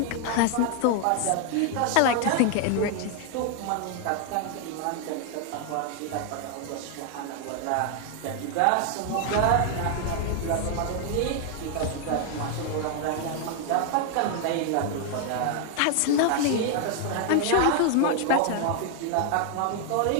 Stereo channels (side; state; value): both; different; correlation 0.00